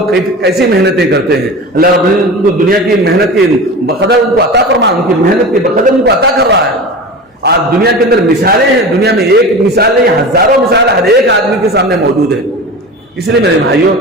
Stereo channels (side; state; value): both; normal; correlation 0.31